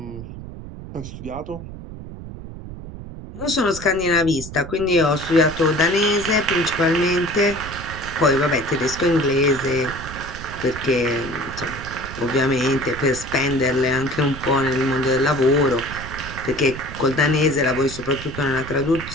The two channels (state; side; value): noise; right; rumble, 11 dB below the sound